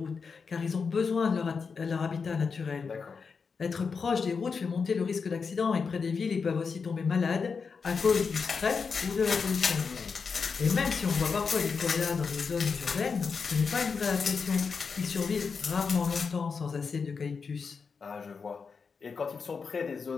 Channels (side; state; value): right; quieter; 5.4 dB